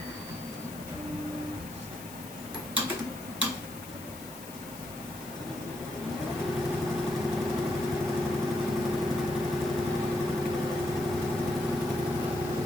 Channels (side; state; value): left; noise; hiss, 15 dB below the sound